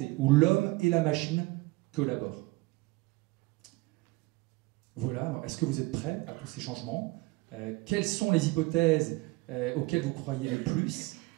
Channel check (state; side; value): quieter; left; 23.0 dB